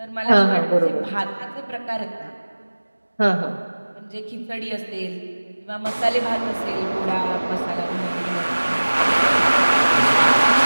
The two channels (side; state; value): both; inverted; correlation -1.00